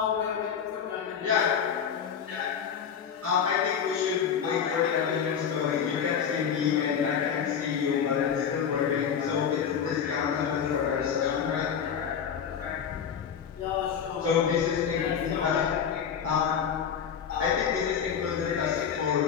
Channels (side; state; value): right; quieter; 7.6 dB